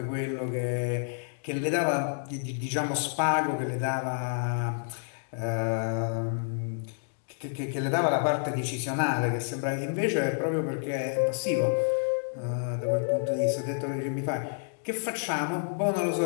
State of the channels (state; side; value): silent; right; digital silence